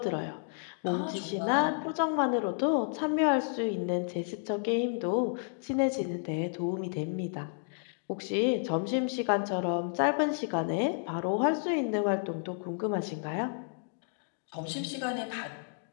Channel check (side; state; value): right; silent; digital silence